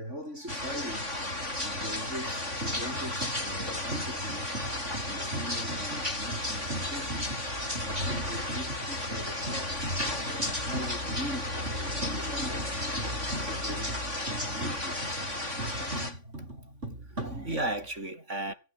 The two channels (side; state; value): left; late; 3.5 ms